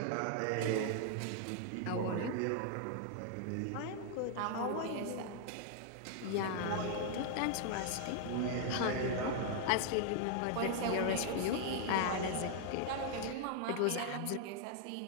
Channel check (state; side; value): different; both; correlation 0.00